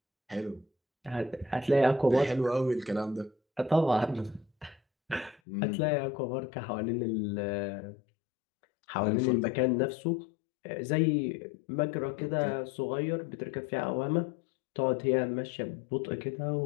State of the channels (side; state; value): right; drops out; at 5.4 s